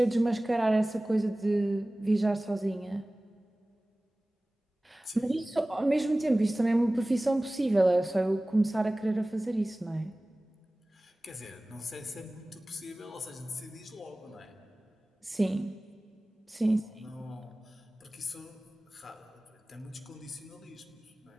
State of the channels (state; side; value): normal; both; correlation 0.98